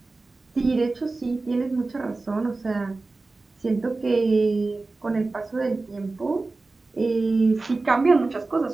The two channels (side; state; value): left; quieter; 3.5 dB